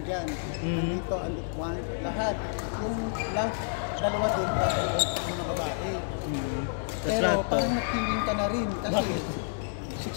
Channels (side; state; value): right; silent; digital silence